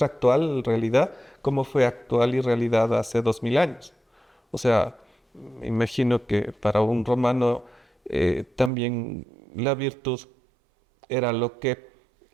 actual realidad como fue actual y realidad hace 2000 años. O sea, me imagino que para un romano también la virtud era lo que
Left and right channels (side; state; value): left; drops out; at 8.7 s